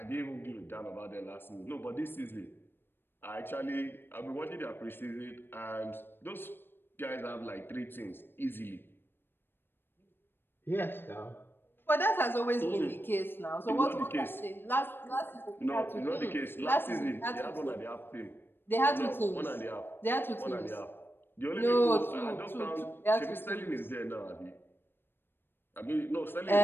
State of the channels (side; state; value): right; late; 0.10 ms